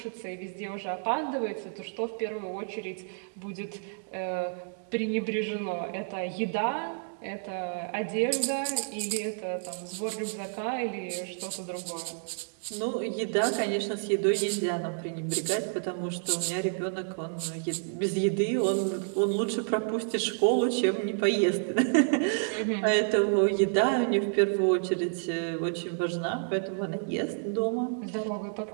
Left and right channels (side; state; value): left; silent; digital silence